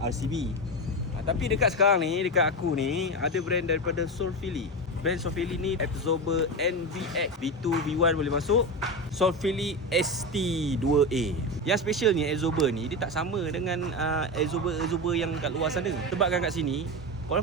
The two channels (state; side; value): normal; both; correlation 0.18